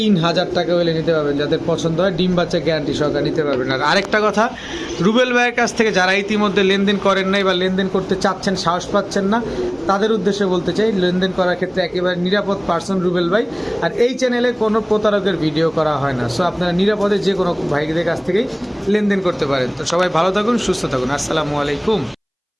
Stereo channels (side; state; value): both; identical; correlation 1.00